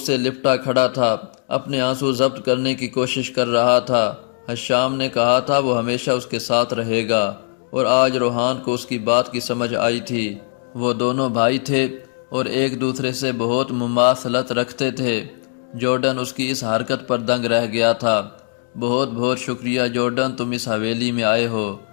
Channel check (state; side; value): silent; right; digital silence